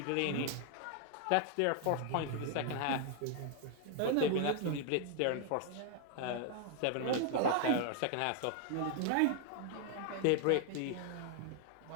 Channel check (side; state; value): both; different; correlation 0.00